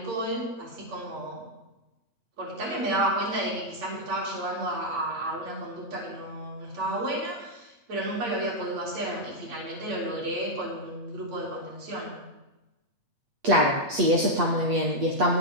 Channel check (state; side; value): late; left; 8.5 ms